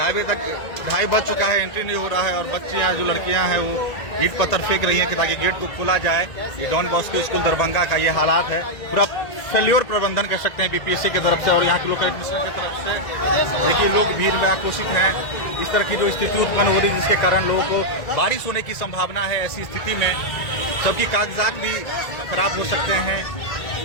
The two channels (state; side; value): late; right; 1.8 ms